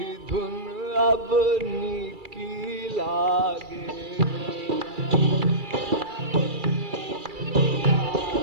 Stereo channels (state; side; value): late; left; 2.3 ms